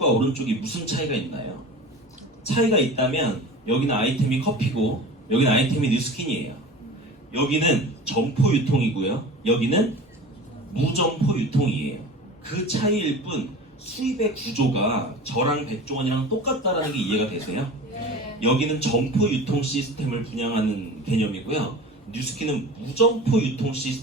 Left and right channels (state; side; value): normal; both; correlation 0.36